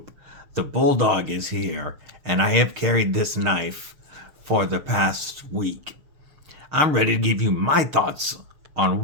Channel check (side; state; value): left; late; 6.5 ms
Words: the Bulldog is here, and I have carried this knife for the past week. I'm ready to give you my thoughts on